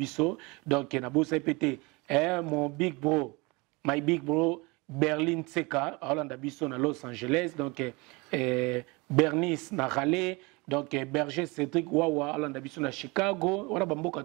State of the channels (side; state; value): left; quieter; 26.3 dB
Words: donc na bosa pété mon big bro my big bro Berlin Tseka, Hollande Abisso à Los Angeles, donc Bernice na Raleigh, donc Berger Cédric Wawa, Hollande Abisso à Chicago, on a bamboka